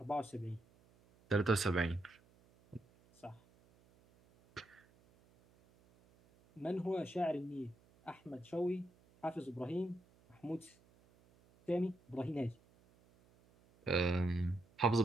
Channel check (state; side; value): noise; right; hum, 30 dB below the sound